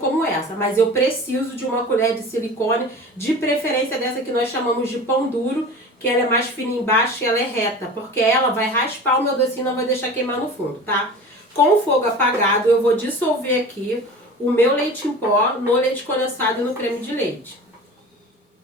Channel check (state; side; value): normal; both; correlation 0.37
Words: essa, mas eu preciso de uma colher de silicone, de preferência dessa que nós chamamos de pão duro, que ela é mais fina embaixo e ela é reta, porque ela vai raspar o meu docinho e não vai deixar queimar no fundo, tá? Com o fogo apagado, eu vou dissolver aqui o meu leite em pó no leite condensado e no creme de leite.